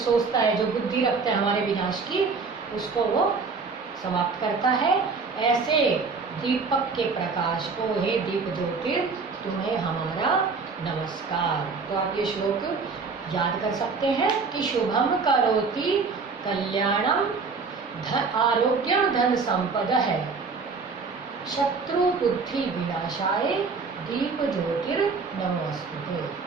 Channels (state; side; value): quieter; left; 4.7 dB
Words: है, जो बुद्धि रखता है हमारे विनाश की, उसको वो समाप्त करता है। ऐसे दीपक के प्रकाश को, हे दीप ज्योतिर तुम्हें हमारा नमस्कार। तो आप ये श्लोक याद कर सकते हैं कि शुभम करोति कल्याणम आरोग्यम धन संपदः शत्रु बुद्धि विनाशाय दीप ज्योतिर नमोस्तुते।